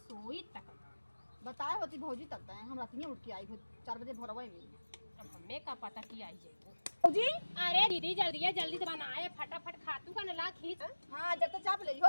सोई तक बताए होती भौजी तक है हम रात में उठ के आई 4 बजे भोरवा में अब हमें का पता कि आई जाए भौजी अरे दीदी जल्दी से बनाए फटाफट खातू का नला खींच हां जब तक चाप ले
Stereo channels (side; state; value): both; inverted; correlation -1.00